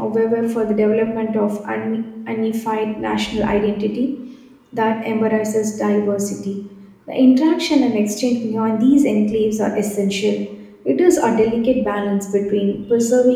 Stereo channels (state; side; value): identical; both; correlation 1.00